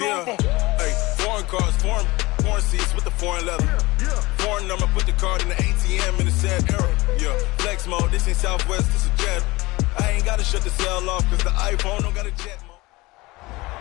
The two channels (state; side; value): quieter; right; 21.8 dB